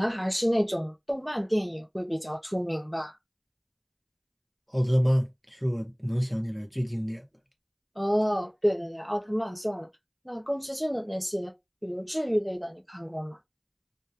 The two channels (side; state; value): both; identical; correlation 1.00